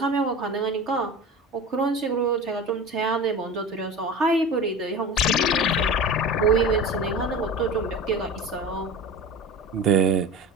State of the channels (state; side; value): normal; both; correlation 0.32